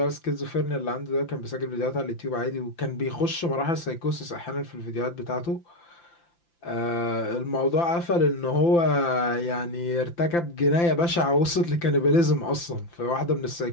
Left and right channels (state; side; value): late; right; 5.9 ms